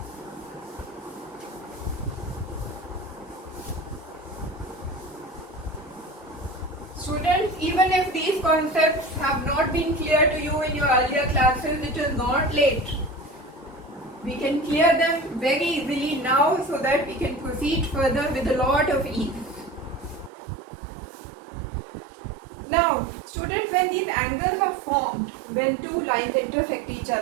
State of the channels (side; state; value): left; drops out; at 20.3 s